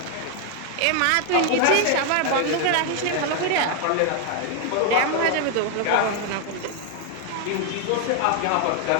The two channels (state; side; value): different; both; correlation 0.01